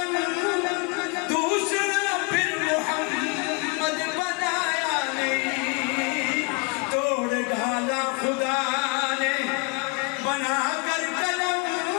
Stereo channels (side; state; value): right; quieter; 31.9 dB